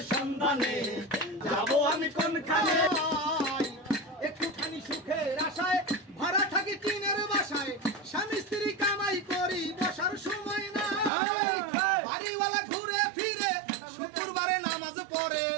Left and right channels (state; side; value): drops out; left; at 11.1 s